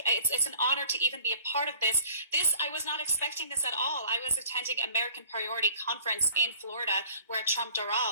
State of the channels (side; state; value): both; inverted; correlation -0.50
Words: an honor to even be a part of this. I was not expecting this at all. I was attending American Priority Conference in Florida where Trump